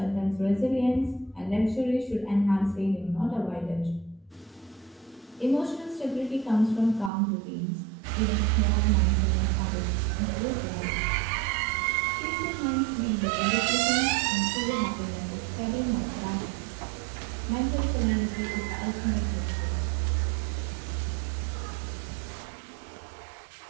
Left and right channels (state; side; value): drops out; left; at 7.1 s